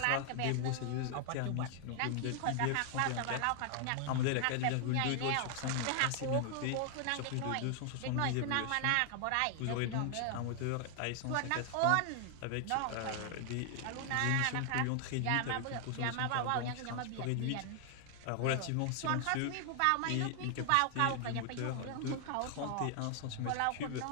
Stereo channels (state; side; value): different; both; correlation 0.00